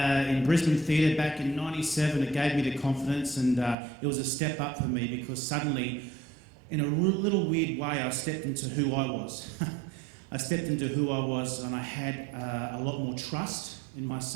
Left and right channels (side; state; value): left; drops out; at 3.8 s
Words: Brisbane Theatre back in '97, it gave me the confidence, and it was a step up for me because suddenly, in a little weird way, I stepped into who I was. I stepped into who I was, and I had a lot more trust in